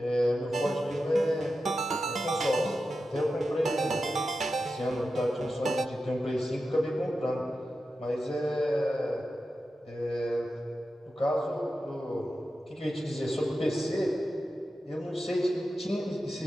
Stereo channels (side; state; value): both; normal; correlation 0.91